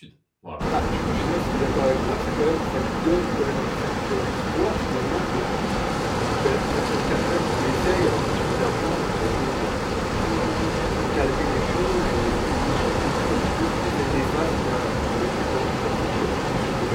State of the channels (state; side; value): identical; both; correlation 1.00